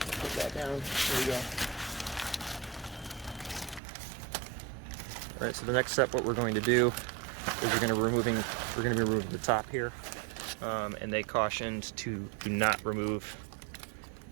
that down. There you go. All right. So the next step, what we're going to do is we're going to be removing the top here, and they cautioned to do not remove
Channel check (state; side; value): drops out; left; at 3.8 s